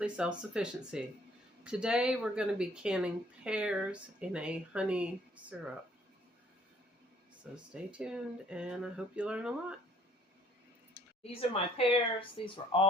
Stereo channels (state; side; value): normal; both; correlation 0.60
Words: Self-Sufficiency. Today we're going to be canning pears in a honey syrup. So stay tuned and I hope you learn a lot. These are my pears. These were